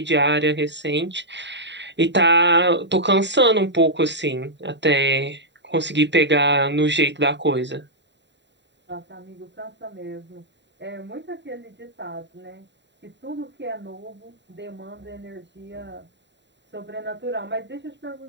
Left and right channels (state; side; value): late; left; 0.52 ms